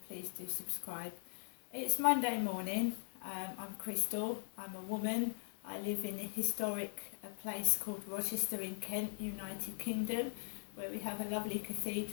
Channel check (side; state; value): right; silent; digital silence